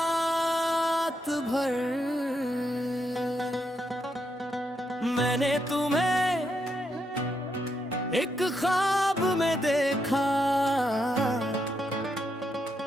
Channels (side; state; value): both; normal; correlation 0.80